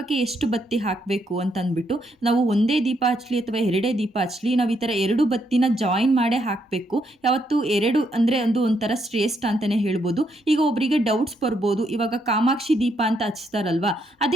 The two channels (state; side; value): normal; both; correlation 0.76